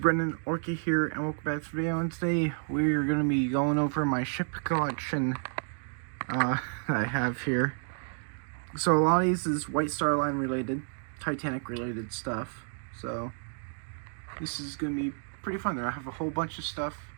Orky here, and welcome back to the video. And today we're going to be going over my ship collection that I have here. So a lot of these is White Star Line related, Titanic related stuff. So this is going to be pretty fun. I have a whole bunch of stuff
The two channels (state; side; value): silent; left; 57 dB below the other